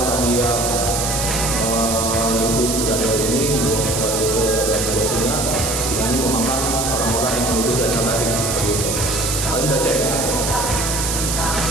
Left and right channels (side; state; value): right; noise; hiss, 1 dB below the sound